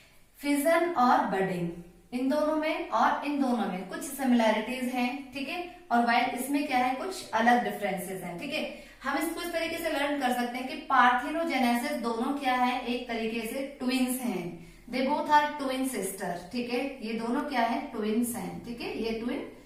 फिजन और बडिंग, इन दोनों में और इन दोनों में कुछ सिमिलैरिटीज हैं, ठीक है। और वाइल इसमें क्या है, कुछ अलग डिफरेंसेस हैं, ठीक है। हम इसको इस तरीके से लर्न कर सकते हैं कि पार्थिनोजेनेसिस दोनों क्या है, एक तरीके से ट्विंस हैं, they both are twin sister, ठीक है। ये दोनों क्या है, ट्विंस हैं, ठीक है, ये ट्विन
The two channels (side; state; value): both; identical; correlation 1.00